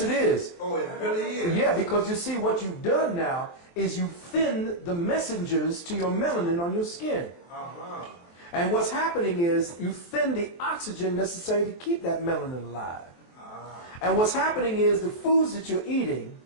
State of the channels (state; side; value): late; right; 23 ms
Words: it is. Oh, it really is? Yeah, because you see, what you've done now is you thin the messengers to your melanin on your skin. And what's happening is you thin the oxygen necessary to keep that melanin alive. And what's happening is the foods that you're eating